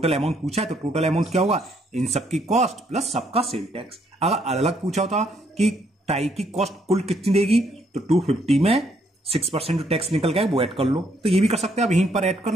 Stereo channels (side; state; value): both; normal; correlation 0.71